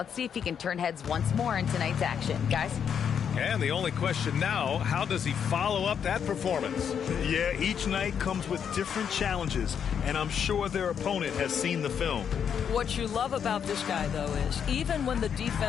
see if he can turn heads once more in tonight's action. Guys? And the only question now, how does he follow up that performance? Yeah, each night comes with different challenges, and I'm sure their opponent has seen the film. What you love about this guy, though, is even when the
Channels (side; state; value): right; quieter; 7.8 dB